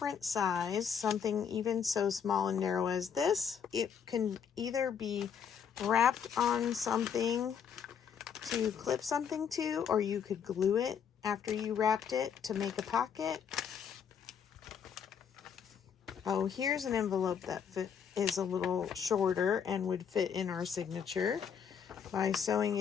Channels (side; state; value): right; quieter; 7.5 dB